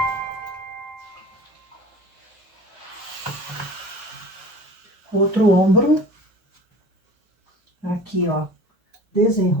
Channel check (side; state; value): both; normal; correlation 0.41